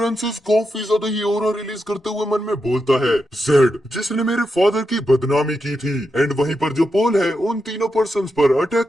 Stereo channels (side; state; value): both; normal; correlation 0.86